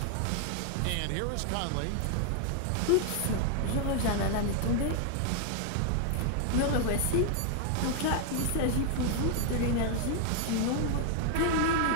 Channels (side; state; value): both; different; correlation 0.00